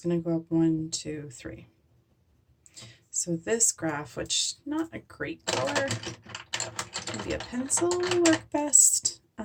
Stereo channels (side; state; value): both; identical; correlation 1.00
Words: going to go up 1, 2, 3. So this graph, which not a great color, maybe a pencil will work best.